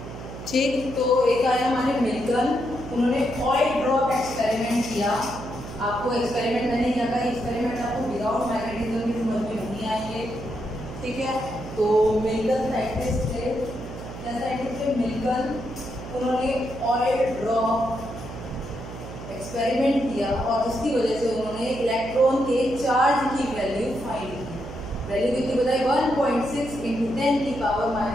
ठीक, तो एक आया हमारे मिल्टन, उन्होंने ऑयल ड्रॉप एक्सपेरिमेंट किया। आपको एक्सपेरिमेंट मैंने क्या कहा, एक्सपेरिमेंट आपको विदाउट मैग्नेटिज्म की समझ में नहीं आएंगे। ठीक है, तो मिल्टन साइंटिस्ट थे, क्या साइंटिस्ट थे, मिल्टन। उन्होंने ऑयल ड्रॉप एक्सपेरिमेंट किया और उसकी वजह से उन्होंने इलेक्ट्रॉन के चार्ज की वैल्यू फाइंड की। वैल्यू कितनी बताई, 1.6 ×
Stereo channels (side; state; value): right; noise; hum, 11 dB below the sound